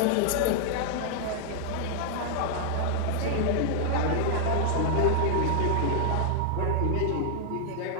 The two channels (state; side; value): different; both; correlation 0.00